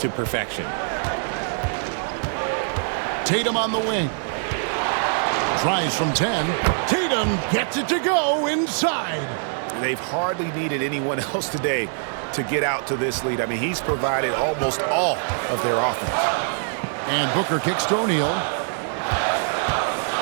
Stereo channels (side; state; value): left; silent; 61 dB below the other